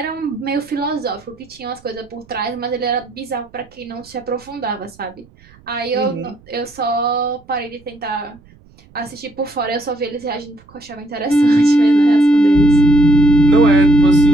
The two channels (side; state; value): right; noise; rumble, 28 dB below the sound